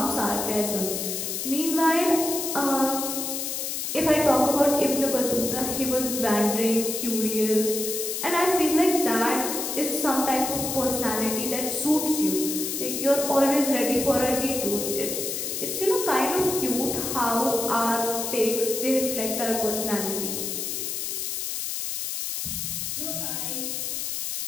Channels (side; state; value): left; noise; hiss, 3 dB below the sound